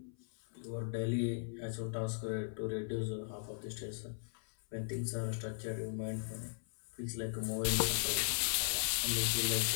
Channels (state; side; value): silent; right; 53 dB below the other